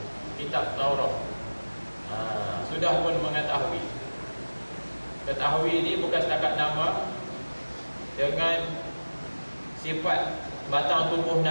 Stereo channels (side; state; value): both; inverted; correlation -1.00